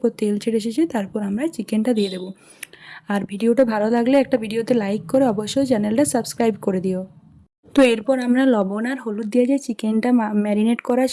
তেল ছেড়ে এসেছে, তারপর আমরা চিকেনটা দিয়ে দেবো। আর ভিডিওটা ভালো লাগলে একটা ভিডিওতে লাইক করে অবশ্যই চ্যানেলটা সাবস্ক্রাইব করে দিও। তো এরপর আমরা লবণ আর হলুদ দিয়ে যে চিকেনটা ম্যারিনেট করা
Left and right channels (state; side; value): identical; both; correlation 1.00